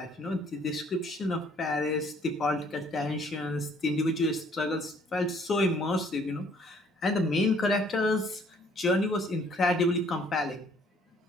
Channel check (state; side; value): normal; both; correlation 0.61